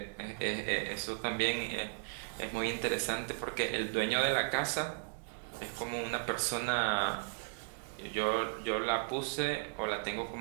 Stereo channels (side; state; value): left; silent; digital silence